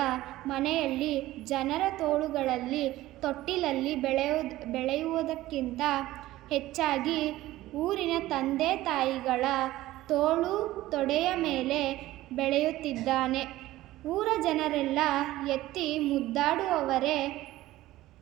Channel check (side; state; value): left; quieter; 16.2 dB